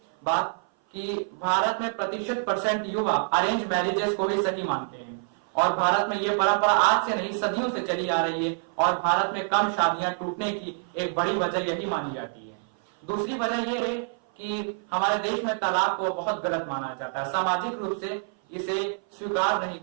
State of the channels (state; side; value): silent; left; 56 dB below the other